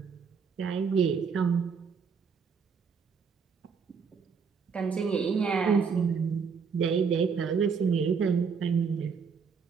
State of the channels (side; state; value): left; quieter; 5.9 dB